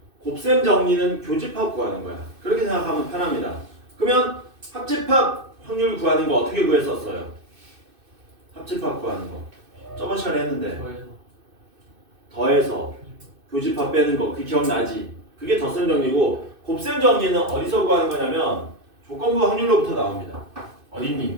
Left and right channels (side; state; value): left; late; 2.6 ms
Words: 곱셈 정리는 교집합 구하는 거야. 그렇게 생각하면 편합니다. 그러면 합집합 확률 구하는 거 어떻게 구했었어요? 합집합 구하는 거 저번 시간에 했는데 더해서 교집합 빼는 거 그 기억나지? 그게 덧셈 정리고 곱셈 정리는 어디서 구하는 거냐면 조건부 확률로부터 나옵니다.